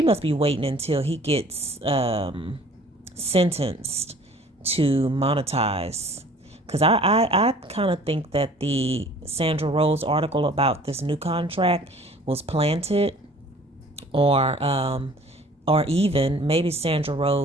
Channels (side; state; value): both; normal; correlation 0.51